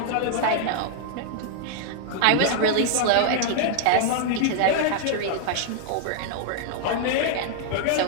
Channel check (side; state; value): both; different; correlation -0.01